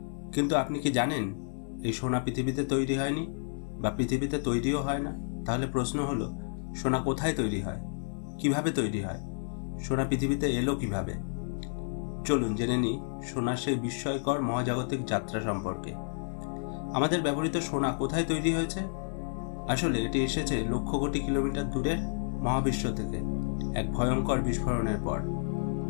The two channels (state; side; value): silent; right; digital silence